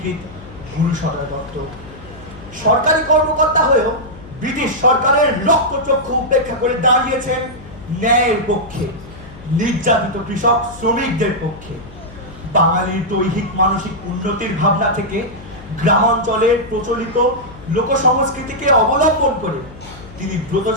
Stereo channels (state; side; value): noise; left; hum, 17 dB below the sound